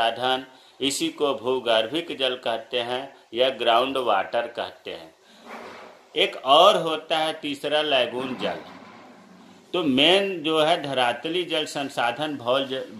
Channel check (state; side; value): identical; both; correlation 1.00